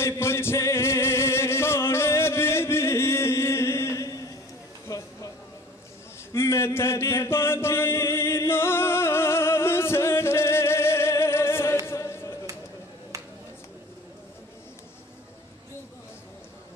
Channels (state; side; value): normal; both; correlation 0.46